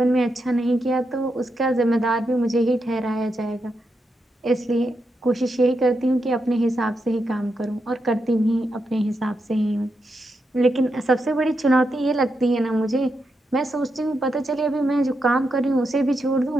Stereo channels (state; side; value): normal; both; correlation 0.84